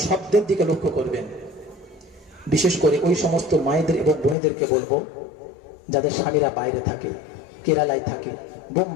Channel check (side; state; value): right; drops out; at 4.4 s